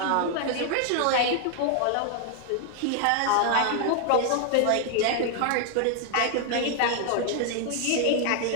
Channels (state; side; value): different; both; correlation 0.00